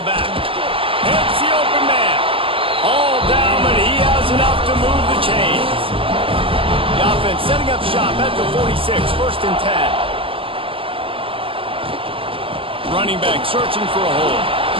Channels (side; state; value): left; late; 0.26 ms